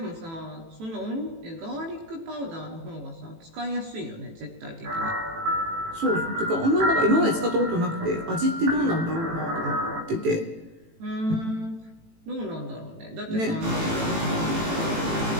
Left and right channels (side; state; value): left; late; 18 ms